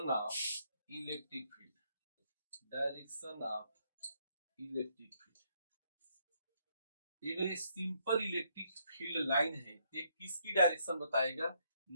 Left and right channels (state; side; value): inverted; both; correlation -0.73